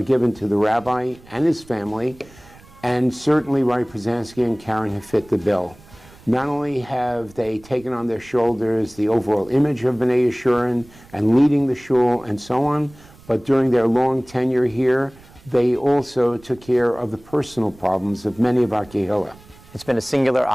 given to the rabbi and his family, and certainly Rabbi Pruzansky and Karen have fit the bill. Not only have they taken on their shoulders the overall image of B'nai Yeshurun and leading the shul and so on, but during their long tenure here, they also took care of the personal problems of many of our kehillah. It's been a singular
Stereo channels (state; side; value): noise; right; rumble, 24 dB below the sound